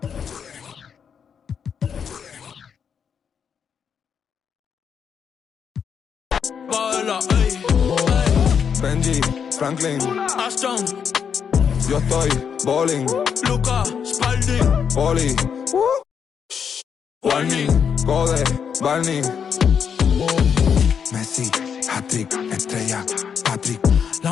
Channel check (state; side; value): quieter; right; 7.2 dB